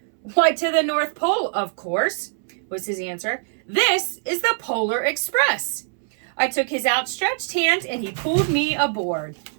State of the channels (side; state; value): left; silent; 63 dB below the other